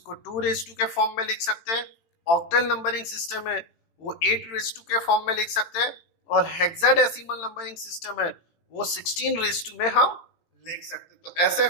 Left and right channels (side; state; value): right; late; 18 ms